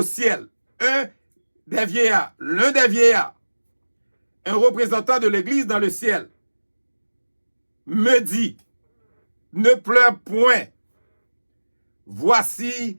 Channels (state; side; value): inverted; both; correlation -1.00